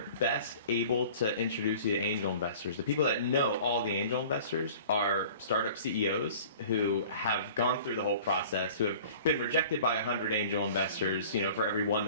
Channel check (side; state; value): both; inverted; correlation -0.45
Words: best able to introduce you to angel investors, the people that know all the angel investors are startup CEOs who have gone through the whole process, who have been rejected by 100 angel investors, for every one